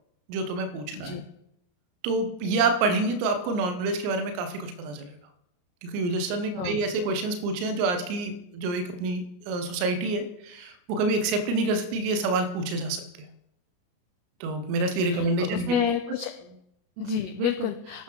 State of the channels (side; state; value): left; late; 34 ms